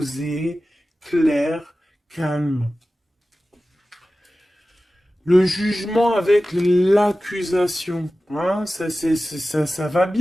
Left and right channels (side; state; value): both; normal; correlation 0.95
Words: clair, calme. Le jugement avec l'accusation, hein, ça va